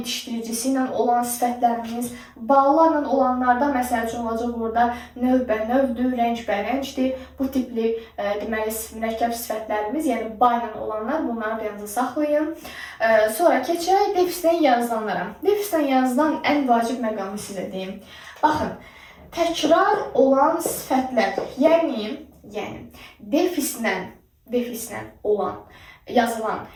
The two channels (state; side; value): identical; both; correlation 1.00